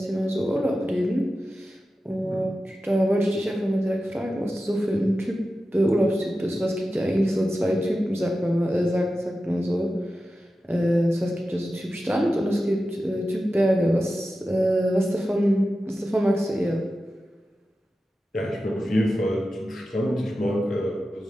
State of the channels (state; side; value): normal; both; correlation 0.93